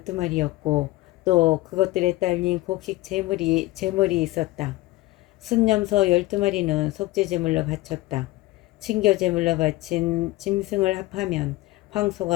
또 그것들에 딸린 곡식 제물이 있었다. 순념소 12마리는 속죄제물로 바쳤다. 친교제물로 바친 짐승을 합하면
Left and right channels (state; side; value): quieter; right; 18.6 dB